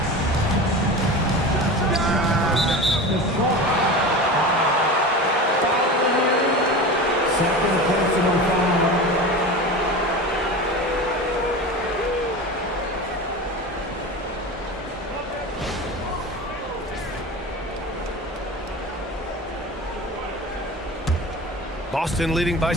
Second personal foul. Boston leading by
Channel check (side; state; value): both; normal; correlation 0.30